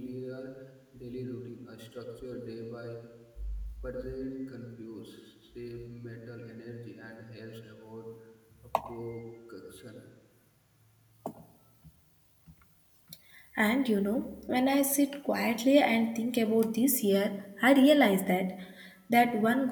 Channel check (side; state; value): both; identical; correlation 1.00